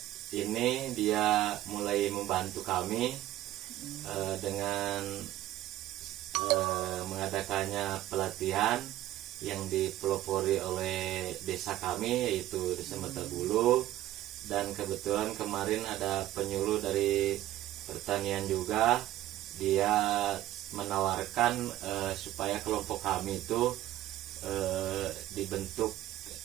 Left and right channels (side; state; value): left; quieter; 14.3 dB